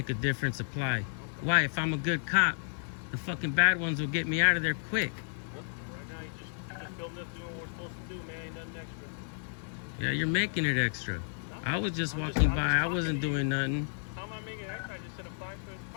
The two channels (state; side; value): silent; right; 56 dB below the other